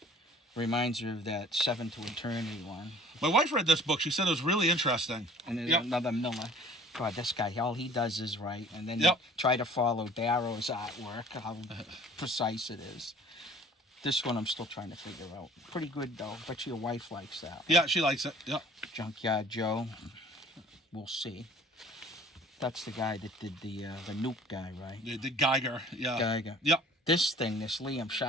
Reminds me of that 7 to Eternity one. My wife read this book. She said it was really interesting. And there's Yep. another Miller. God, this guy, all he does is write, and then Yep. you try to follow Darrow's artwork, how precise it is. This one I'm still trying to figure out. Pretty good, though. Bet your wife likes that. Yeah, she likes it. Yep. Junkyard Joe. We'll see. That's the guy that did the Nuke guy, right? The Geiger. Yeah. Geiger. Yep. This thing, this Liam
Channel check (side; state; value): both; normal; correlation 0.51